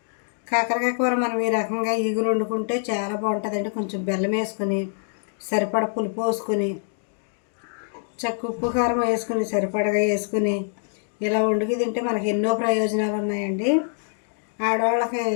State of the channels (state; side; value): silent; right; 58 dB below the other